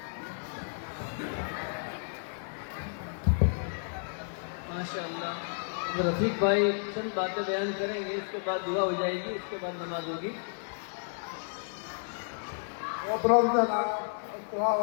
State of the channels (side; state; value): right; silent; digital silence